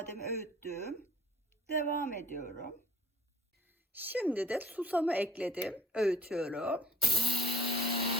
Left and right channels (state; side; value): normal; both; correlation 0.57